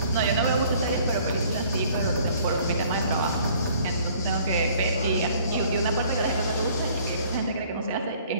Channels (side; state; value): both; inverted; correlation -0.57